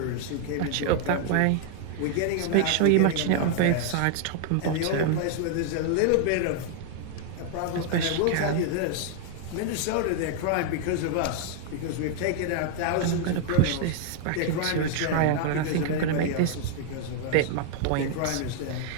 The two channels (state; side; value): different; both; correlation 0.00